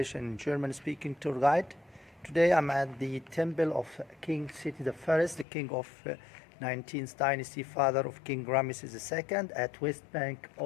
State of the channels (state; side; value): drops out; right; at 5.5 s